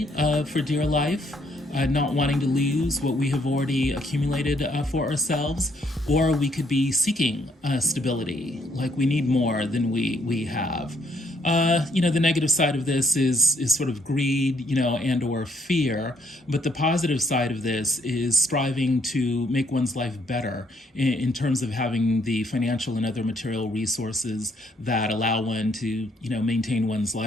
for dear life, not wanting to lose what we have already accumulated for ourselves, or we could be seeking stability, like we need more than we have. The negative side of this is sort of greed, and or fear. But the positive side of this is striving to make one's life better in terms of having the financial and other material resources that allow one to, maintain one's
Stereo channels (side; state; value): both; normal; correlation 0.70